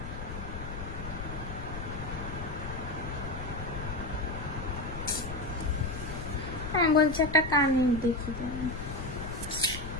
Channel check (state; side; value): noise; left; rumble, 8 dB below the sound